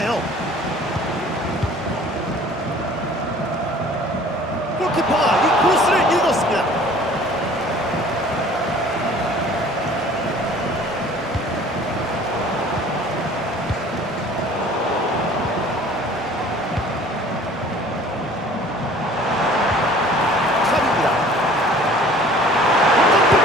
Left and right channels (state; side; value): normal; both; correlation 0.49